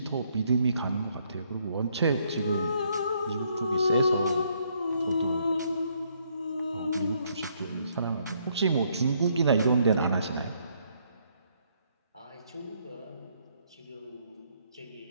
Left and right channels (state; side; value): inverted; both; correlation -0.70